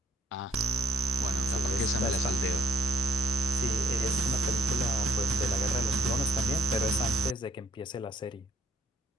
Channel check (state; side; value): normal; both; correlation 0.63